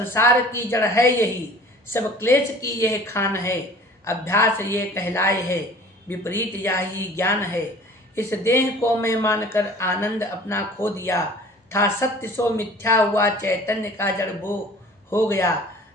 की जड़ है यही, सब क्लेश की यह खान है। अभ्यास ये कहलाए है, विपरीत यही ज्ञान है। इस देह को मैं मानकर आनंद अपना खो दिया, था सत्य सो मिथ्या हुआ, चैतन्य का जड़ वो हो गया।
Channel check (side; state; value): both; normal; correlation 0.46